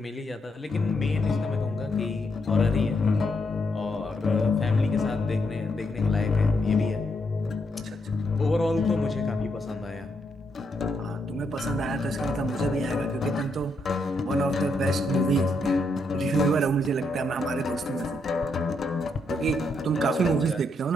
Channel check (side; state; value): both; normal; correlation 0.78